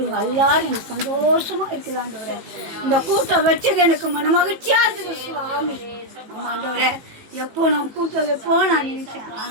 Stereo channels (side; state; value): left; late; 18 ms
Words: எல்லாரும் எனக்கு சந்தோஷமாக இருக்குது ஆண்டவரே. இந்த கூட்டம் வச்சது எனக்கு மன மகிழ்ச்சியாக இருக்குது சுவாமி. ஆமாம் ஆண்டவரே, எப்போ நான் கூட்டம் வைப்போ நான் நினைச்சேன்.